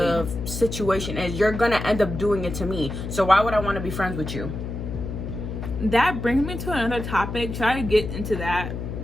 situation is, you're gonna end up doing it to me. So why would I want to be friends with you? That brings me to another topic. Should I get into that?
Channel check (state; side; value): noise; left; hum, 6 dB below the sound